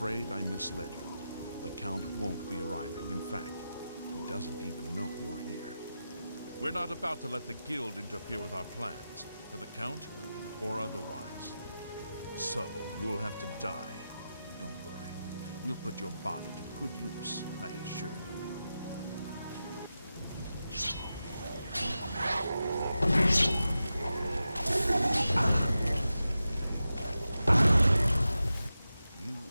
I misled you. The Count won't be arriving. In fact, he doesn't even know you're here. We're not about to let the Guild interfere with our plans, for the Count or otherwise. So, you'll have to die. Don't worry. We'll put your body to good use, I assure you. You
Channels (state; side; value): inverted; both; correlation -0.91